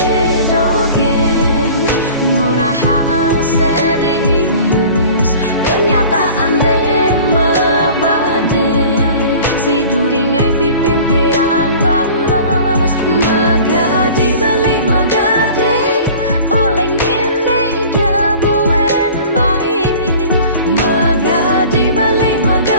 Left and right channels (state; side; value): inverted; both; correlation -0.44